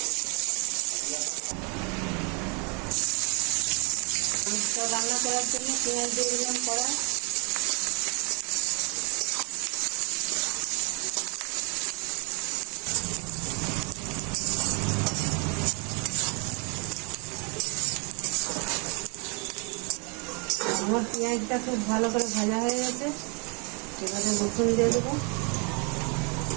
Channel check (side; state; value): left; quieter; 33.8 dB